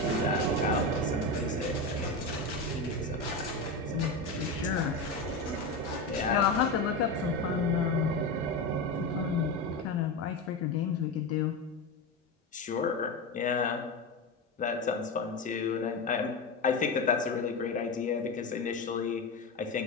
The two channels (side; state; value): right; quieter; 3.0 dB